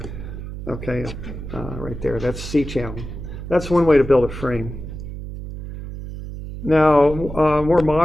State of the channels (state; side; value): noise; right; hum, 9 dB below the sound